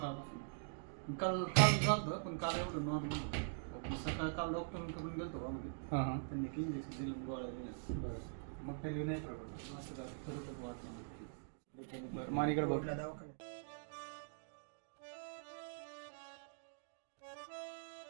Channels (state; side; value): silent; left; digital silence